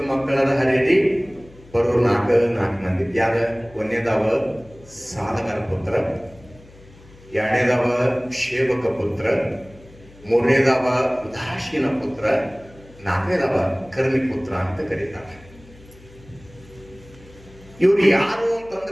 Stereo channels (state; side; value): noise; left; hum, 23 dB below the sound